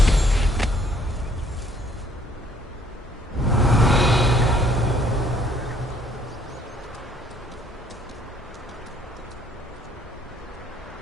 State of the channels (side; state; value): both; normal; correlation 0.63